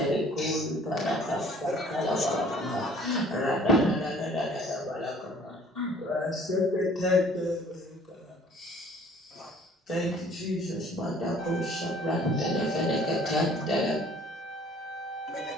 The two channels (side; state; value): both; normal; correlation 0.54